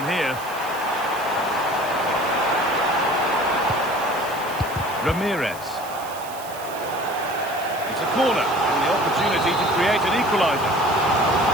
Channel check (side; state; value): right; noise; hiss, 16 dB below the sound